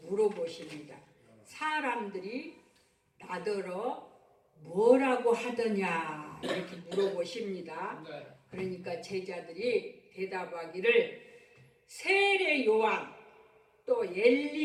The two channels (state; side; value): identical; both; correlation 1.00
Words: 물어보십니다. 사람들이 나더러 뭐라고 하더냐 이렇게 물어보십니다. 그러니까 제자들이 대답하기를 세례 요한 또